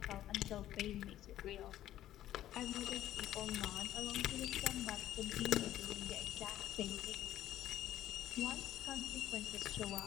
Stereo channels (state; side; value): quieter; right; 12.9 dB